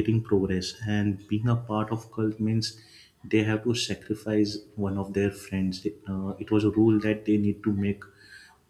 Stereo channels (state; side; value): identical; both; correlation 1.00